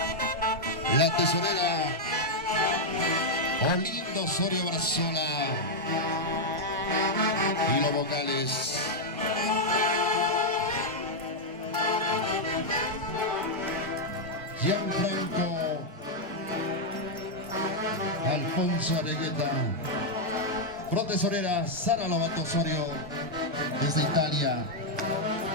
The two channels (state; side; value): normal; both; correlation -0.02